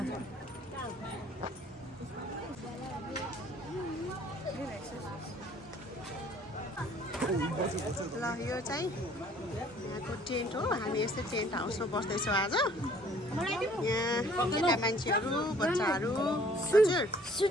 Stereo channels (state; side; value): normal; both; correlation 0.56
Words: ल यो चाहिँ यहाँको टेन्ट हो। हामी यस्तै टेन्ट हाउसमा बस्दैछौँ आज। यहाँ केटा मान्छेहरू, बच्चाहरू। हजुर